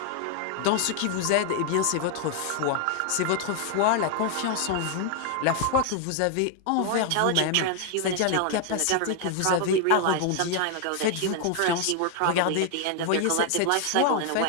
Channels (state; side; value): different; both; correlation 0.00